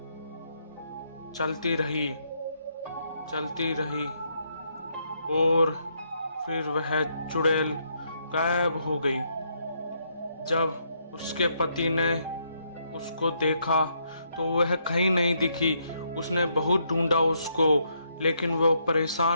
चलती रही और फिर वह चुड़ैल गायब हो गई। जब उसके पति ने उसको देखा तो वह कहीं नहीं दिखी। उसने बहुत ढूंढा उसको, लेकिन वो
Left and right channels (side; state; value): both; inverted; correlation -0.75